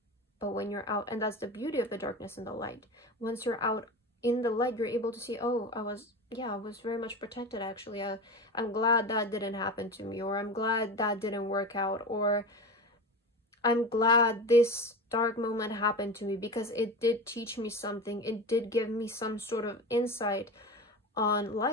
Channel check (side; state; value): both; normal; correlation 0.27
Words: But when you're out, and that's the beauty of the darkness and the light. Once you're out in the light, you're able to see, oh, I was very much protected, actually. I'm glad that didn't happen to me, or I'm glad that didn't work out, or I'm glad this dark moment happened to me because it did teach me something. It did give me some sort of insight on